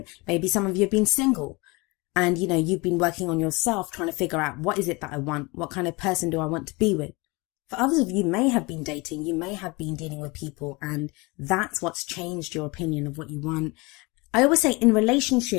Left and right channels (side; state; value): right; quieter; 25.8 dB